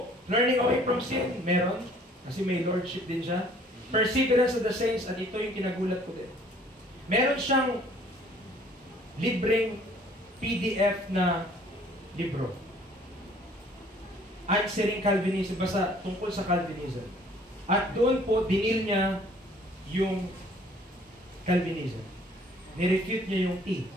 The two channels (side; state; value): both; normal; correlation 0.57